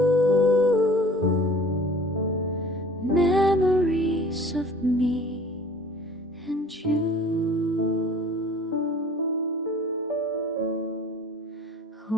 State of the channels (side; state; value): both; normal; correlation 0.47